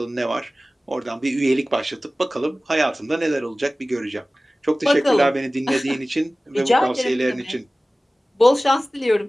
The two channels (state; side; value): normal; both; correlation 0.97